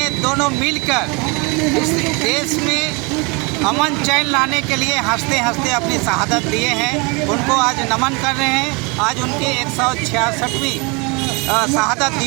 दोनों मिलकर इस देश में अमन चैन लाने के लिए हंसते हंसते अपनी शहादत दिए हैं। उनको आज नमन कर रहे हैं। आज उनकी 166वीं शहादत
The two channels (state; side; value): quieter; left; 29.2 dB